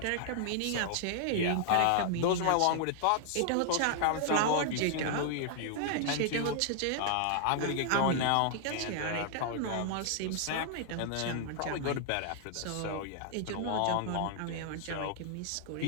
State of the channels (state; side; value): different; both; correlation 0.00